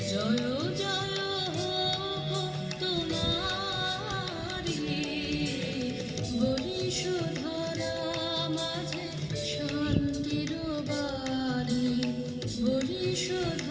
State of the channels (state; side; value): identical; both; correlation 1.00